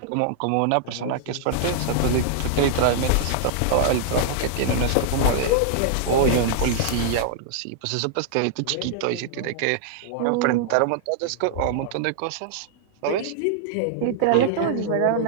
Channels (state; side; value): different; both; correlation -0.01